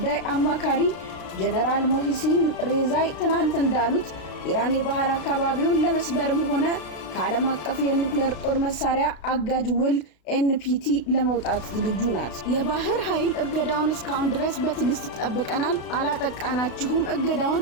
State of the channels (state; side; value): late; right; 32 ms